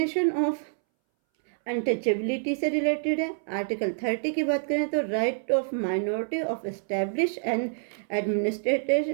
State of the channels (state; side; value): silent; left; 60 dB below the other